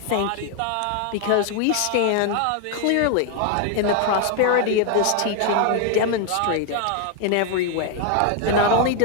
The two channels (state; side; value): different; both; correlation 0.00